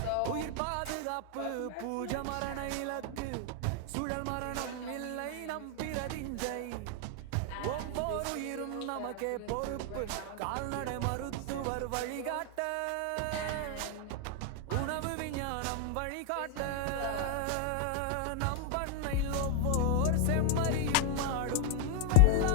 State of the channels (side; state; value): both; different; correlation 0.00